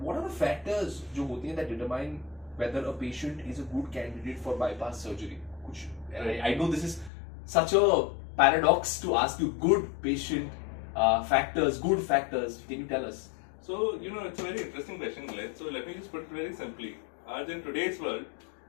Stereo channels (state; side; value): drops out; right; at 7.1 s